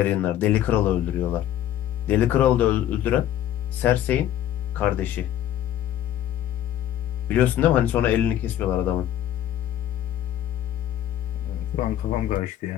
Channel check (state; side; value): quieter; right; 11.6 dB